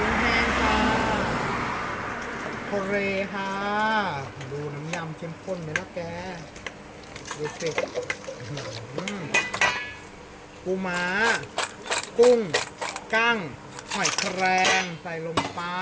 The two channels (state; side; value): identical; both; correlation 1.00